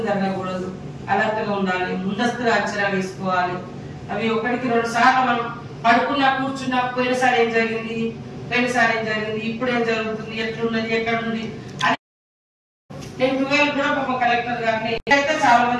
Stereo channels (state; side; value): identical; both; correlation 1.00